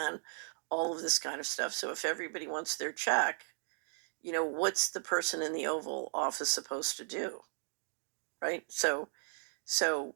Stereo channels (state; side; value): silent; left; digital silence